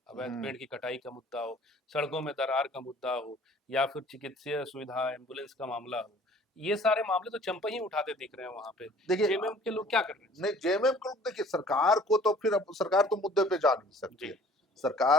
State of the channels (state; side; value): normal; both; correlation 0.52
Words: अवैध हम्म पेड़ की कटाई का मुद्दा हो, सड़कों में दरार का मुद्दा हो या फिर चिकित्सीय सुविधा, एम्बुलेंस का मामला हो। ये सारे मामले तो चंपई ही उठाते दिख रहे हैं वहाँ पे। देखिए जेएमएम के लोग क्या कर रहे हैं नहीं, इसमें? जेएमएम को देखिए, सरकार को तो फिर अब सरकार तो मुद्दे पे जा नहीं सकती जी, है।